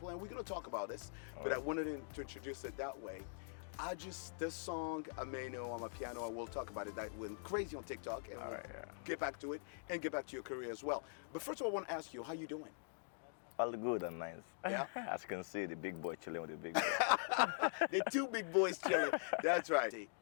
and we're going to talk about this, but I wanted to introduce it that way. This song, Ameno Amapiano, and we'll talk about it. That went crazy on TikTok, and we'll get back to it and get back to your career as well. But first of all, I want to ask you, how you doing? All good and nice. Yeah. As you can see, the big boy chilling with the big boy. The two big boys chilling. That's right.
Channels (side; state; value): right; silent; digital silence